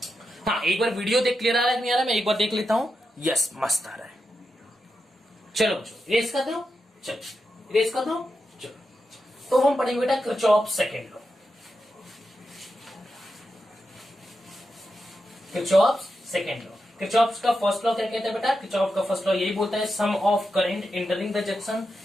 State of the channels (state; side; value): normal; both; correlation 0.88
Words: हाँ, एक बार वीडियो देख क्लियर आ रहा है कि नहीं आ रहा है? मैं एक बार देख लेता हूं। यस, मस्त आ रहा है। चलो बच्चों इरेज कर दो, चलो इरेज कर दो। चलो तो हम पढ़ेंगे बेटा Kirchhoff's second law. Kirchhoff's second law, Kirchhoff's का फर्स्ट लॉ क्या कहता है बेटा? किरचॉफ का फर्स्ट लॉ यही बोलता है sum of current entering the junction